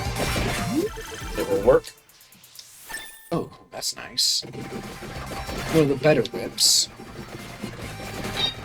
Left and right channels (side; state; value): both; identical; correlation 1.00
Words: It will work. Oh, that's nice. One of the better whips.